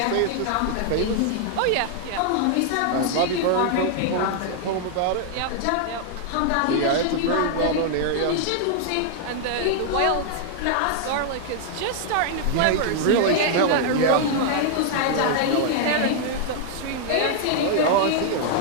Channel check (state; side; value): different; both; correlation -0.01